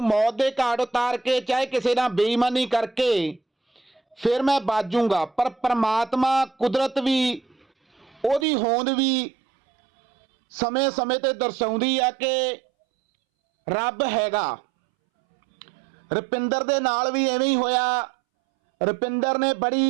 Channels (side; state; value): left; drops out; at 8.5 s